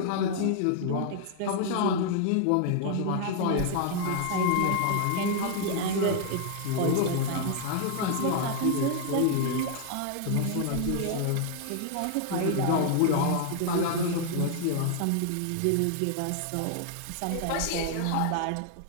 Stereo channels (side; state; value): both; different; correlation 0.00